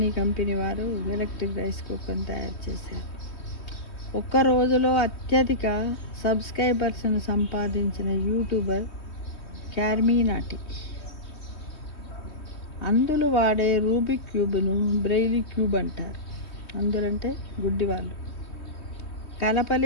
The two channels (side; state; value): right; late; 3.2 ms